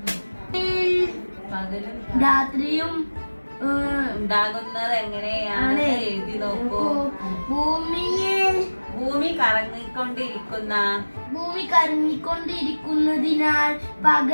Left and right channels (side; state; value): both; inverted; correlation -1.00